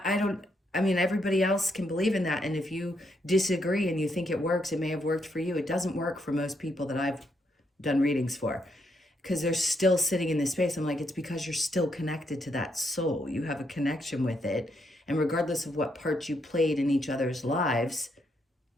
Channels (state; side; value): normal; both; correlation 0.77